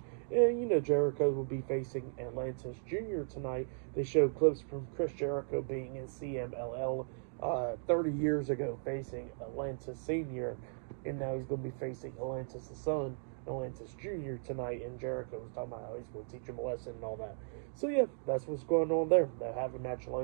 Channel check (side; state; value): left; silent; digital silence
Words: And, Jericho will be facing Atlantis Jr. tonight. They show clips from Chris Jericho being in CMLL 30 years ago, facing Atlantis Sr., and now he's going to be facing Atlantis' son, Atlantis Jr. tonight, and Jericho was talking about how he's going to teach him a lesson and all that. So yeah, that's what's going on there. They'll have a match